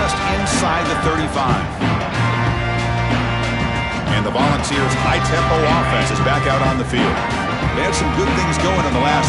inside the 35. And the Volunteers' high-tempo offense is back out on the field. They had some good things going in the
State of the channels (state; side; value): identical; both; correlation 1.00